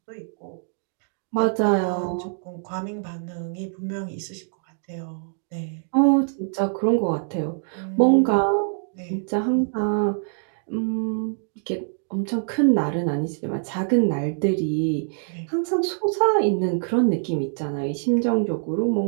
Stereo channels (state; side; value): silent; left; digital silence